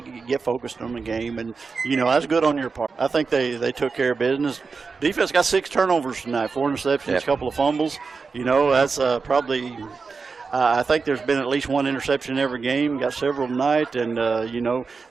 get focused on the game, and, that's good on your part. I think they took care of business. Defense got 6 turnovers tonight, 4 interceptions, a couple of fumbles. That's probably I think there's been at least 1 interception in every game, got several tonight. And,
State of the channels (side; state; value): left; quieter; 4.8 dB